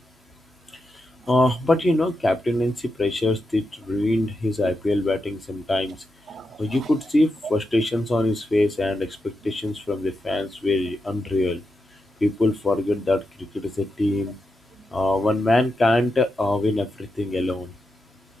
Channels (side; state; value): both; normal; correlation 0.87